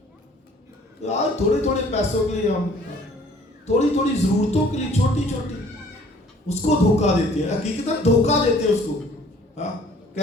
آج تھوڑے تھوڑے پیسوں کے لیے, ہم تھوڑی تھوڑی ضرورتوں کے لیے چھوٹی چھوٹی اس کو دھوکہ دیتے ہیں. حقیقتاً دھوکہ دیتے ہیں اس کو.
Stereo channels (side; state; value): both; normal; correlation 0.55